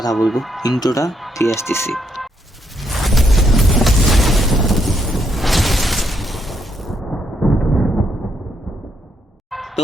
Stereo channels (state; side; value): normal; both; correlation 0.76